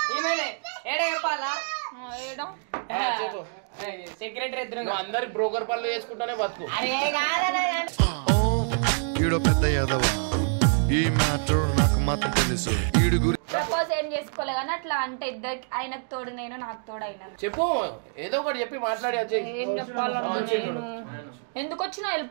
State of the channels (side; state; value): left; silent; 61 dB below the other